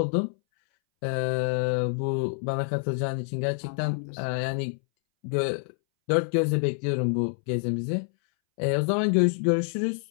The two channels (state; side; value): silent; right; 60 dB below the other